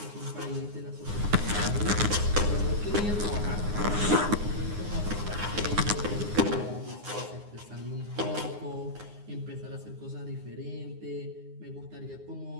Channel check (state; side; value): late; left; 9.7 ms